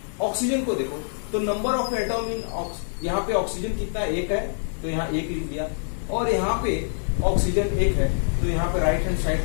ऑक्सीजन को देखो तो नंबर ऑफ एटम इन यहाँ पे ऑक्सीजन कितना 1 है, तो यहाँ 1 लिख दिया। और यहाँ पे ऑक्सीजन 1 है, तो यहाँ पे राइट हैंड साइड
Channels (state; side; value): silent; right; digital silence